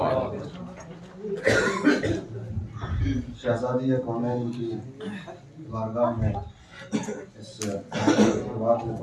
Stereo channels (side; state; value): both; identical; correlation 1.00